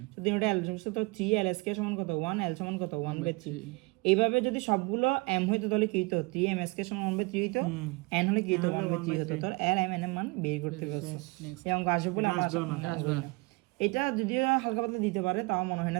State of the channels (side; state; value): left; quieter; 27.0 dB